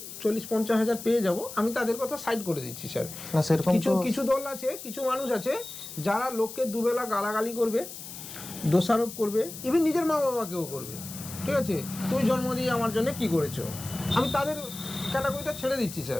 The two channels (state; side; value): noise; left; hiss, 12 dB below the sound